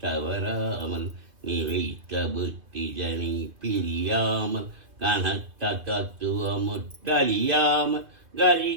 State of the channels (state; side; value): late; left; 2.4 ms